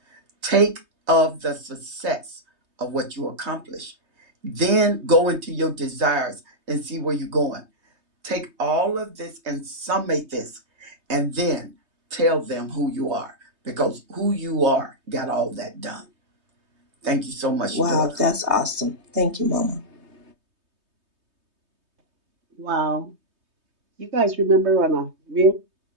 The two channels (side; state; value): left; late; 3.2 ms